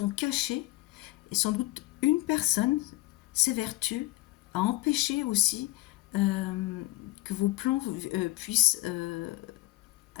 cachées. Et sans doute, une personne s'évertue à empêcher aussi que vos plans puissent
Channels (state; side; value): quieter; right; 19.9 dB